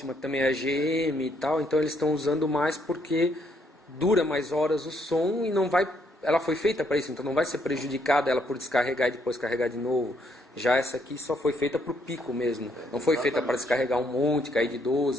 que também é AGM e tal. Então eles estão usando mais porque dura mais horas o som e não vai... Ela foi feita para isso, então não vai ser prejudicada ela por descarregar e depois carregar de novo. Já essa aqui só foi feita para o pico mesmo. Não foi feita para descarregar um monte, cair de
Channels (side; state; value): both; normal; correlation 0.71